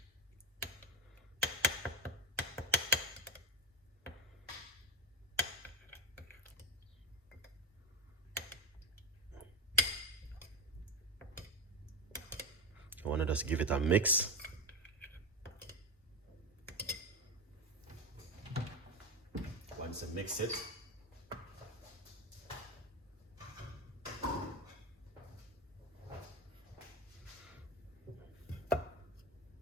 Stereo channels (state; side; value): normal; both; correlation 0.16